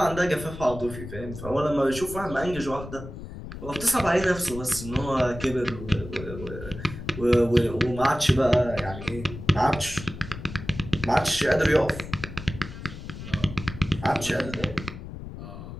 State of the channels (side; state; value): left; noise; rumble, 11 dB below the sound